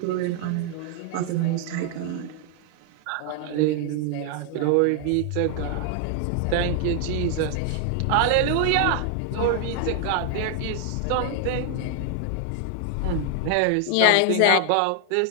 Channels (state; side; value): different; both; correlation 0.00